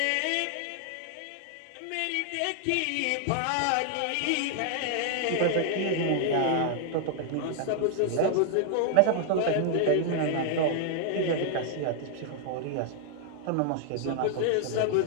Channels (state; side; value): different; both; correlation 0.00